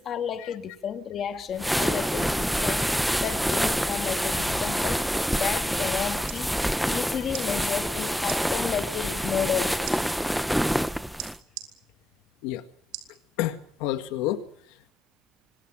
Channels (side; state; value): both; normal; correlation 0.86